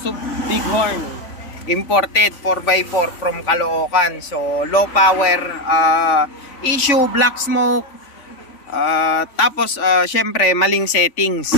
Bighorn. Imported 4x4 from Caloocan. So, low power issue, black smoke. Tapos, syempre, maling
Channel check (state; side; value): late; right; 3.5 ms